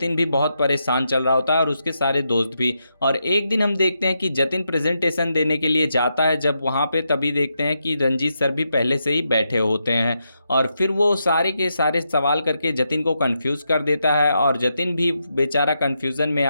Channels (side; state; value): both; inverted; correlation -0.84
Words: भी बहुत परेशान चल रहा होता है और उसके सारे दोस्त भी। और एक दिन हम देखते हैं कि जतिन प्रेजेंटेशन देने के लिए जाता है, जब वहाँ पे तभी देखते हैं कि रंजीत सर भी पहले से ही बैठे होते हैं और फिर वो सारे के सारे सवाल करके जतिन को कंफ्यूज कर देता है और जतिन भी बेचारा कंफ्यूजन में